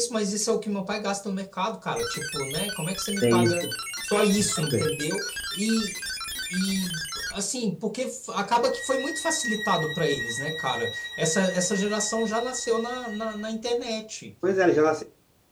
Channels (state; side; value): identical; both; correlation 1.00